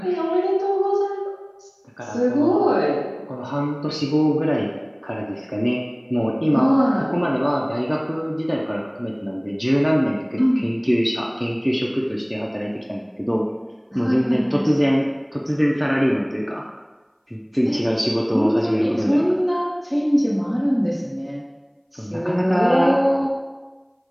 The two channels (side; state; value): both; identical; correlation 1.00